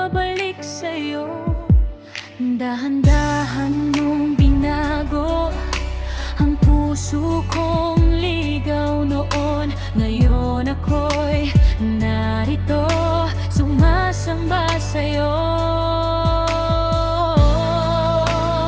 sa'yo. Dahan-dahan mong binago ang puso kong ligaw noon. Ngayon ako'y narito, sumasamba sa'yo.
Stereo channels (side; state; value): both; identical; correlation 1.00